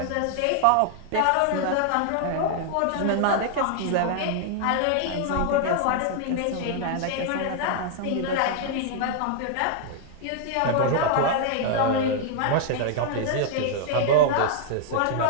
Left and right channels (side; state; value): both; different; correlation -0.01